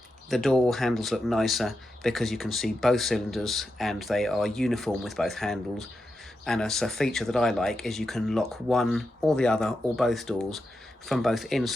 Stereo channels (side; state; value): both; normal; correlation 0.88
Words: the door handles look nicer because you can see both cylinders and they are uniform with both handles. And as a feature that I like is you can lock one or the other or both doors from both